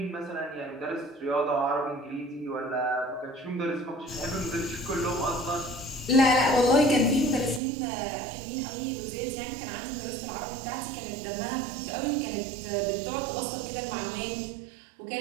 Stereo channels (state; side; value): drops out; left; at 7.6 s